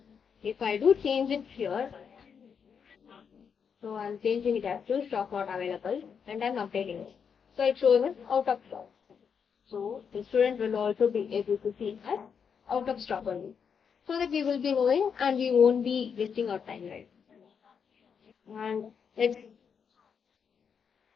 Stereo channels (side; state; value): right; quieter; 6.8 dB